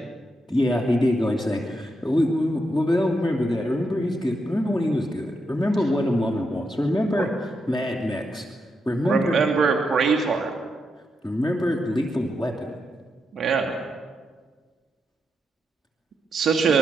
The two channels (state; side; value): normal; both; correlation 0.83